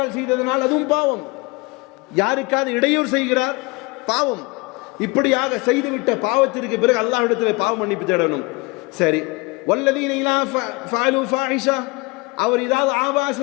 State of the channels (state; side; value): quieter; right; 26.1 dB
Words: செய்ததனால் அதுவும் பாவம். யாருக்காவது இடையூறு செய்கிறார், பாவம். இப்படியாக செய்துவிட்ட பாவத்திற்கு பிறகு அல்லாஹ்விடத்தில் பாவ மன்னிப்பு தேடணும். சரி, வல்லதீன இலா ஃபஅலு ஃபாஹிஷா, அவர் ஏதாவது